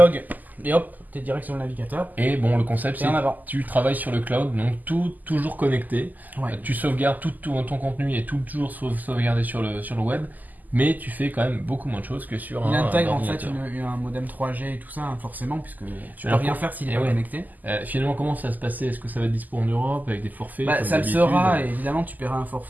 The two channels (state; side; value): late; left; 0.083 ms